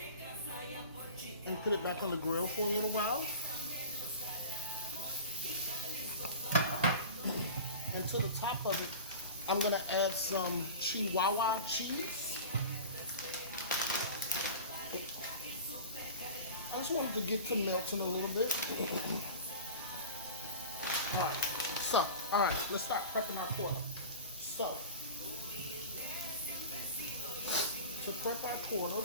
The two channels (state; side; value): inverted; both; correlation -0.36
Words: and put it back on the grill for a little while. And to the top of it, I'm going to add some Chihuahua cheese. I just wanted to get to melting a little bit. Alright, let's start prepping our pork. So, to prep our